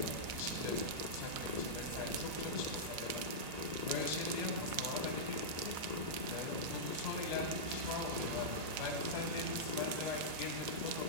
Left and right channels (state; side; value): late; left; 2.0 ms